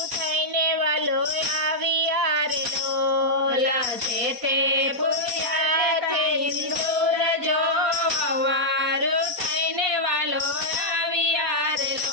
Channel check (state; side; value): late; left; 4.2 ms